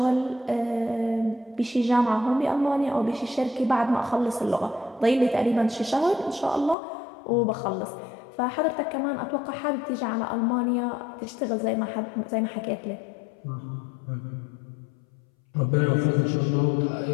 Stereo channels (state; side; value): drops out; right; at 6.8 s